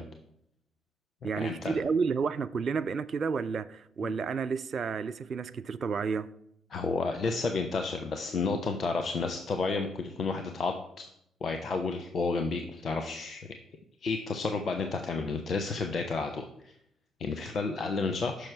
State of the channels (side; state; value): both; normal; correlation 0.73